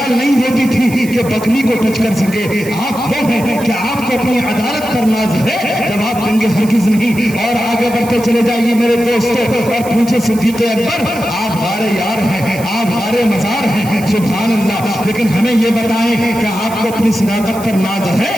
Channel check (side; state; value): right; noise; hiss, 16 dB below the sound